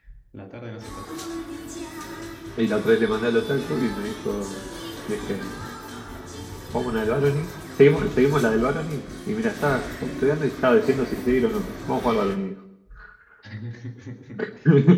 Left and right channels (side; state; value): both; identical; correlation 1.00